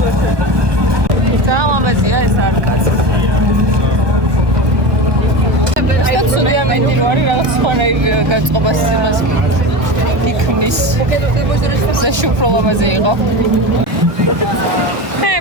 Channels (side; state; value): left; late; 1.2 ms